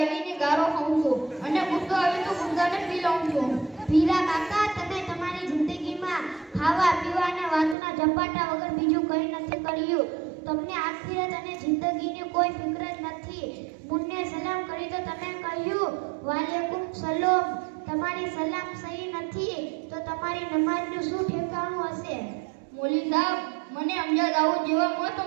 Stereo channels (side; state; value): left; drops out; at 7.8 s